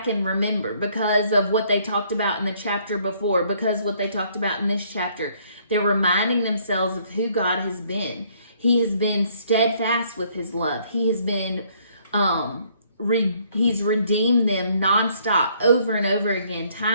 and remember, because of what they talked about in the chapter before, because what they talked about in this chapter, they're reminding themselves of who God has been. He has been steadfast with His love. He has been, He's redeemed them nonstop, over and over again,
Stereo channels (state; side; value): inverted; both; correlation -0.65